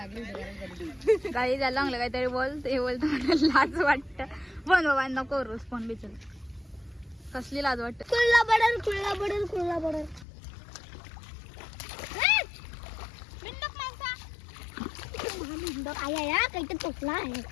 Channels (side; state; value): right; drops out; at 10.2 s